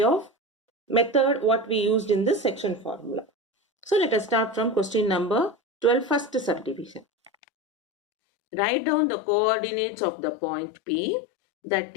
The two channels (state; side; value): drops out; right; at 7.3 s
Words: of method what we used in this section formula. So let us start from question number 12, first subdivision. Write down the coordinates of the point P that